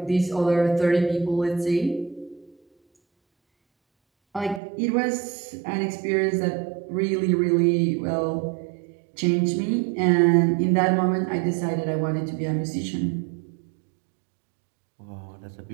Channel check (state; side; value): drops out; left; at 4.6 s